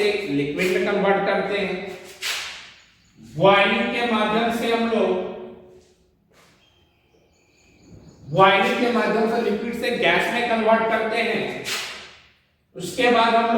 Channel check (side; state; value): both; identical; correlation 1.00